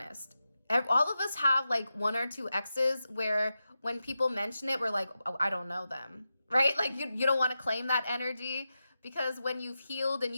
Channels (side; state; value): both; inverted; correlation -0.91